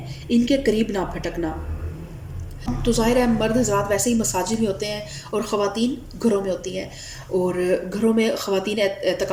ان کے قریب نہ پھٹکنا۔ تو ظاہر ہے مرد حضرات ویسے ہی مساجد میں ہوتے ہیں اور خواتین گھروں میں ہوتی ہیں، اور گھروں میں خواتین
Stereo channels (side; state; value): both; identical; correlation 1.00